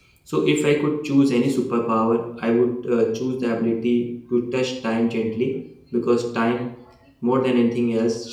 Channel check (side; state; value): both; identical; correlation 1.00